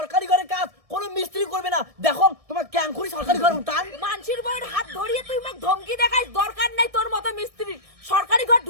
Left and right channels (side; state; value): left; late; 1.6 ms